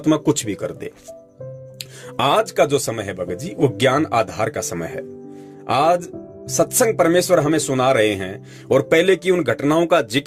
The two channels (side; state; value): both; identical; correlation 1.00